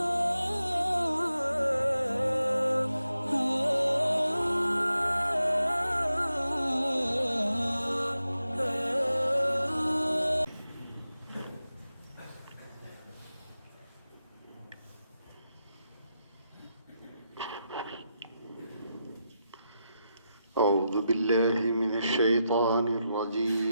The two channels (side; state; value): both; inverted; correlation -0.87